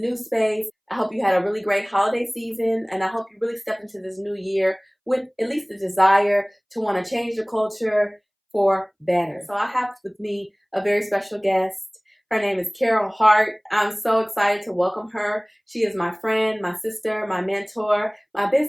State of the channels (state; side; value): identical; both; correlation 1.00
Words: space. I hope you had a really great holiday season, and I hope you really step into this new year with at least the desire to want to change the culture for better. So I have with me a very special guest. Her name is Carole Hart. I'm so excited to welcome her. She is my friend, my sister, my mentor, my